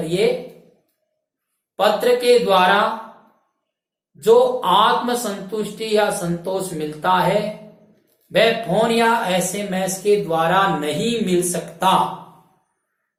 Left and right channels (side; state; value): both; identical; correlation 1.00